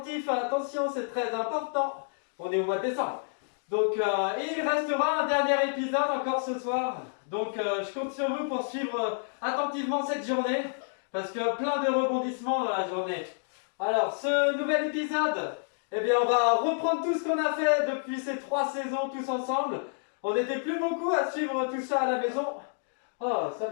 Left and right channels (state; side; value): silent; right; digital silence